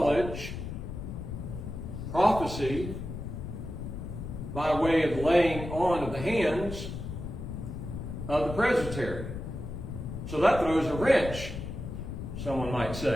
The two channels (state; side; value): noise; left; rumble, 7 dB below the sound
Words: prophecy, by way of laying on of the hands of the presbytery. So that throws a wrench, someone might